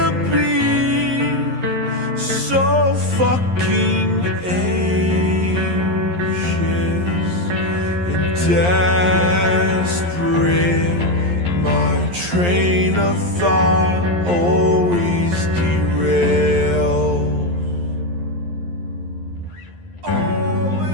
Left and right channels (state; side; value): late; left; 11 ms